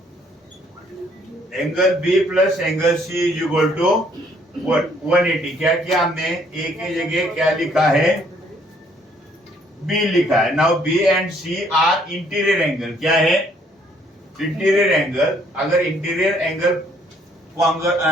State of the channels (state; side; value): normal; both; correlation 0.65